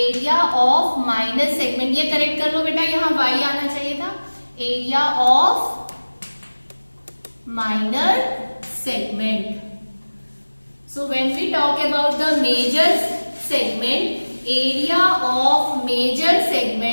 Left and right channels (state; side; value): inverted; both; correlation -1.00